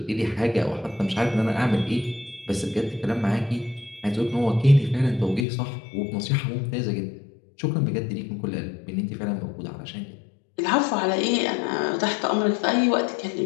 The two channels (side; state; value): right; drops out; at 5.5 s